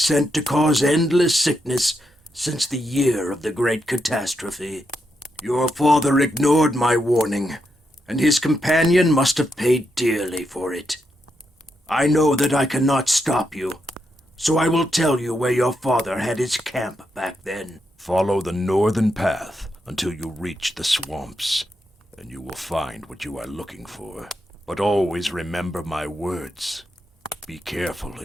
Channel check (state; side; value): normal; both; correlation 0.83